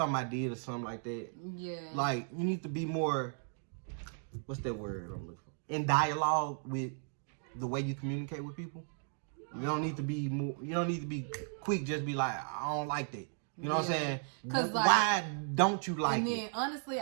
did or something like that. Yeah. Like, you need to be more, what's that word I'm looking for? In dialogue with the way you communicate with people. You don't need to be quick, just be like, I don't like that. You know what I'm saying? Cause why don't you like it? And then, honestly,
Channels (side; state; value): left; silent; 54 dB below the other